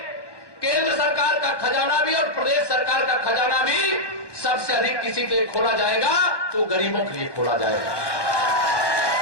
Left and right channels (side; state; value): right; late; 1.1 ms